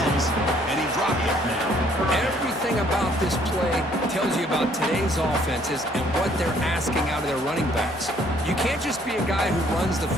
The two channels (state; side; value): normal; both; correlation 0.63